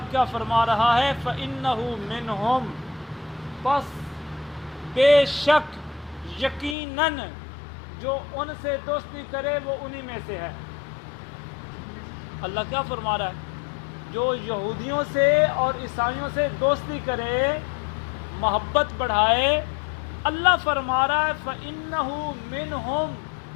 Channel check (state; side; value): drops out; right; at 6.8 s